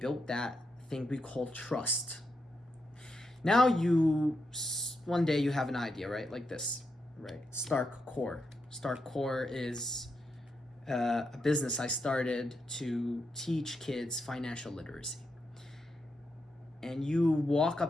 that thing we call trust. Now one day you have an idea, right? Like this, right? Stark Core. Stark Core is a business I started to teach kids financial literacy. And you walk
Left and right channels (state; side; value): normal; both; correlation 0.84